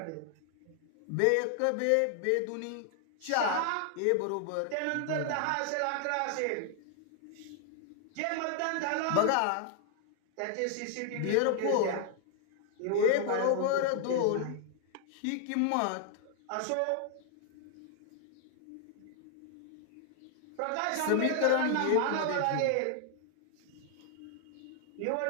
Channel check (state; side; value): different; both; correlation 0.00